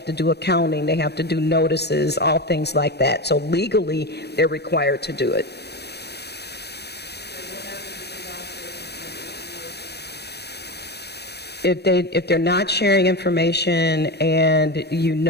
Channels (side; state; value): right; late; 0.48 ms